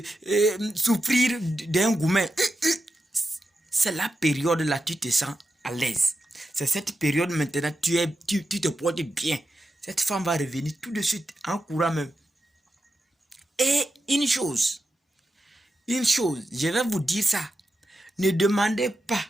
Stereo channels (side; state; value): both; normal; correlation 0.89